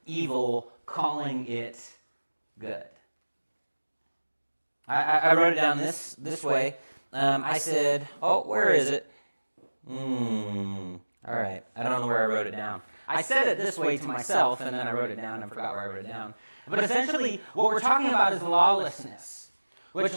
evil, calling it good. I wrote it down this way. I said, oh, where is it? All right, I don't know where I wrote it down. I said it this way to myself, and then I wrote it down and forgot where I wrote it down. But essentially, what we're talking about is lawlessness, which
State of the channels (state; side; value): inverted; both; correlation -1.00